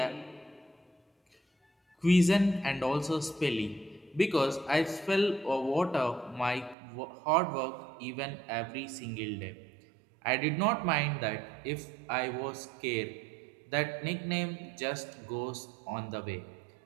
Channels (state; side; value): drops out; left; at 6.8 s